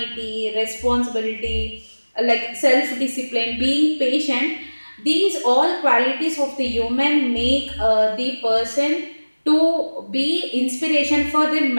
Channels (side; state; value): both; inverted; correlation -1.00